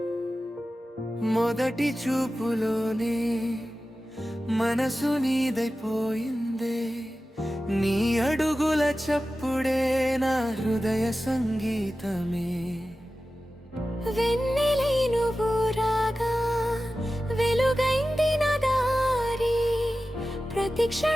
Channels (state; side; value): normal; both; correlation 0.94